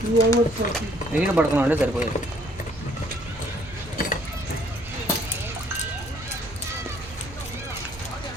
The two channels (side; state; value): both; normal; correlation 0.62